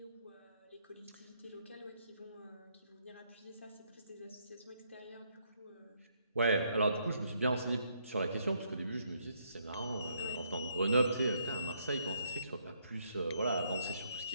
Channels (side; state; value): both; inverted; correlation -0.72